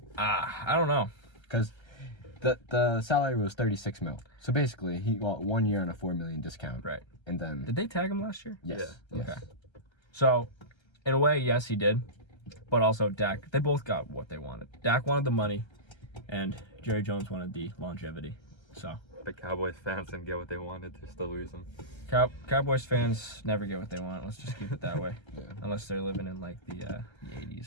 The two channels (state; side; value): late; right; 1.3 ms